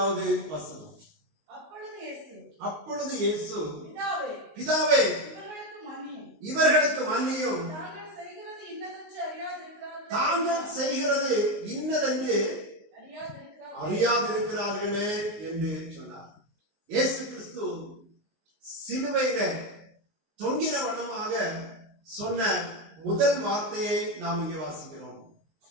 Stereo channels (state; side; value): late; left; 19 ms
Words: வசனம். அப்பொழுது இயேசு பிதாவே இவர்களுக்கு மன்னியும், தாங்கள் செய்கிறது இன்னதென்று அறியாதிருக்கிறார்களே என்று சொன்னார். இயேசு கிறிஸ்து சிலுவையில தொங்கின வண்ணமாக சொன்ன முதல் வார்த்தையை நாம் இங்கே வாசிக்கிறோம்.